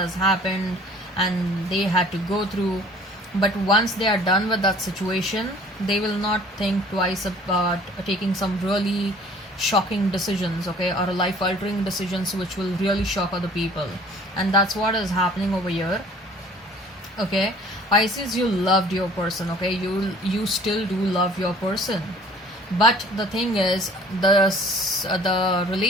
happened and they had to go through. But once they are done with that situation, they will not think twice about taking some really shocking decisions, okay, or life altering decisions which will really shock other people. And that's what is happening over here. Okay, Pisces, you loved your person, okay, you still do love your person, but the thing is, the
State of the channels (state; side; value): normal; both; correlation 0.52